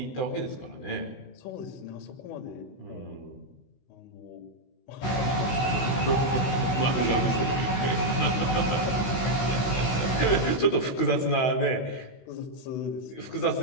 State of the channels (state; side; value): late; right; 16 ms